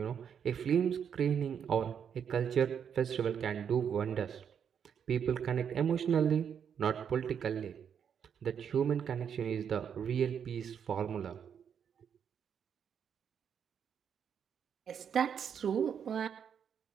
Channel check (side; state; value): left; quieter; 7.8 dB